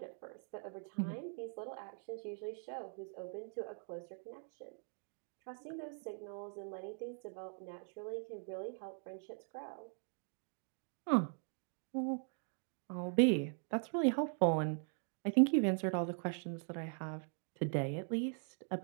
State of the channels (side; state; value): left; silent; 50 dB below the other